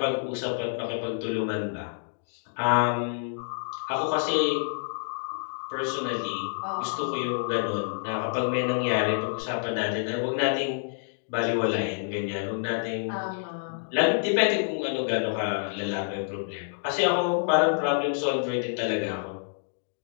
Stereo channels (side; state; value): right; silent; digital silence